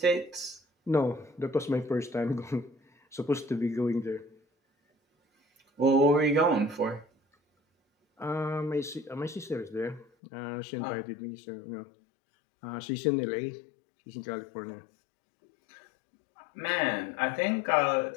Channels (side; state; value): right; drops out; at 10.1 s